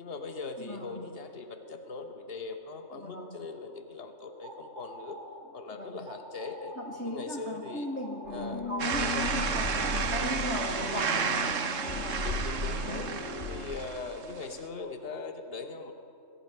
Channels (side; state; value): left; late; 3.7 ms